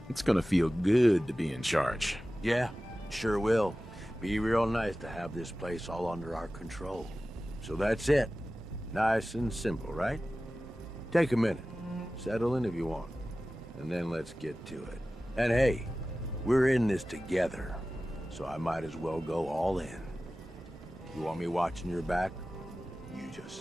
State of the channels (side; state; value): both; normal; correlation 0.96